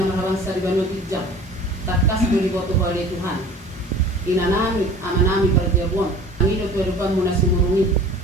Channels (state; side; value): normal; both; correlation 0.44